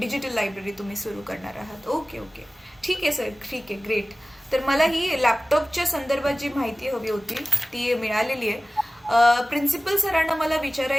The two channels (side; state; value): both; normal; correlation 0.97